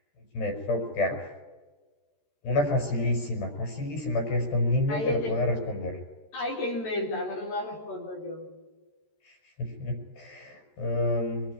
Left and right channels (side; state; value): right; late; 14 ms